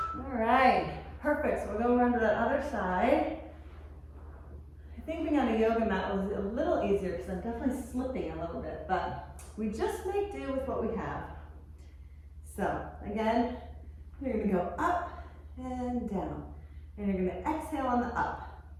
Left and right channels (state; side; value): identical; both; correlation 1.00